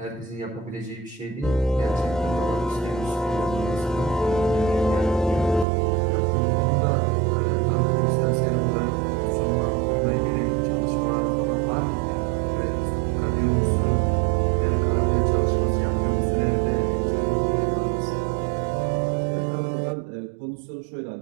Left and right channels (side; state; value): left; drops out; at 5.7 s